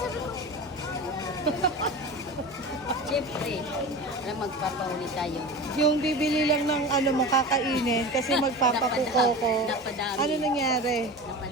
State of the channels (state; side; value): normal; both; correlation 0.31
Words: Sabi ko, Siyempre, magpapauli tayo. Yung bibili lang ng ano mo kakainin kasi magpapakuko ko. Napadami. Ano nangyari?